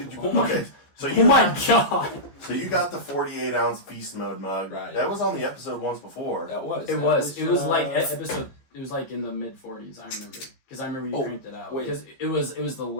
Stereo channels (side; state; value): right; late; 15 ms